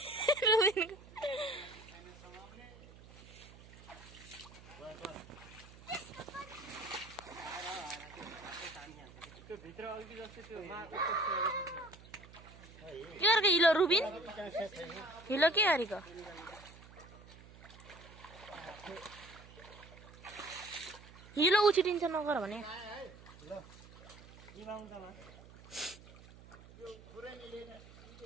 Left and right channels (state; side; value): noise; right; hum, 19 dB below the sound